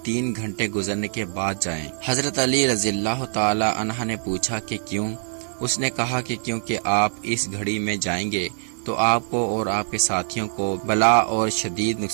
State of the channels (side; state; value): left; silent; digital silence